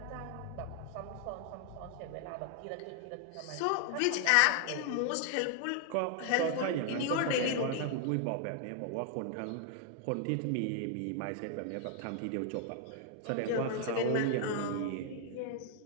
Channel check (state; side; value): different; both; correlation 0.00